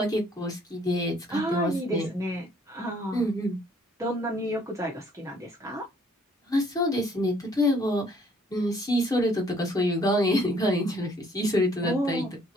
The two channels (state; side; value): normal; both; correlation 0.62